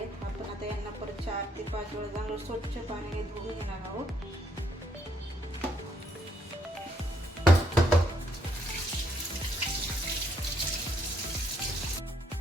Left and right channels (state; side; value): normal; both; correlation 0.71